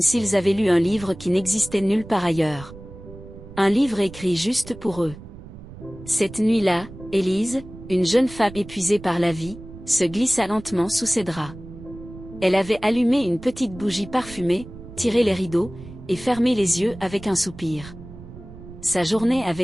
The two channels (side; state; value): right; noise; rumble, 16 dB below the sound